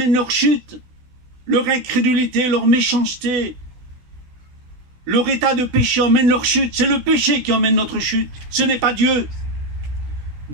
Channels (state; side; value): late; left; 16 ms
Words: leur chute, leur incrédulité, leur méchanceté, leur état de péché emmène leur chute. C'est le péché qui emmène notre chute. Ce n'est pas Dieu.